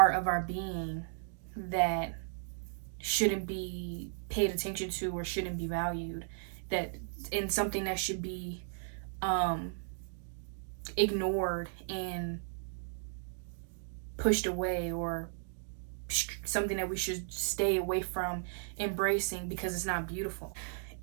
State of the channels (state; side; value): silent; left; digital silence